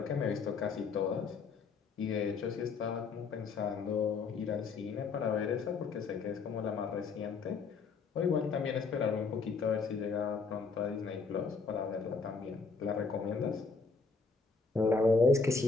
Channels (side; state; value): right; quieter; 4.6 dB